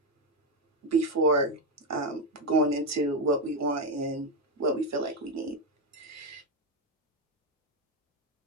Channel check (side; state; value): both; normal; correlation 0.09